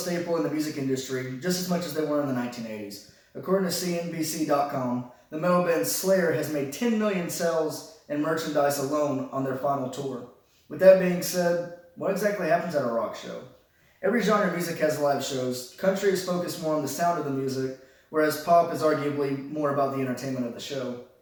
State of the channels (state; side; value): identical; both; correlation 1.00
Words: in the music industry just as much as they were in the 1980s. According to CNBC.com, the metal band Slayer has made 10 million sales in merchandise alone on their final tour. With that being said, what exactly happens at a rock show? Every genre of music has live shows. Country is focused more on the sound of the music, whereas pop is arguably more about the entertainment of the show.